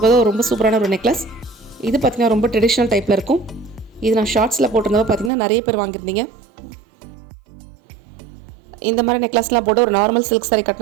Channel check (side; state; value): left; drops out; at 5.3 s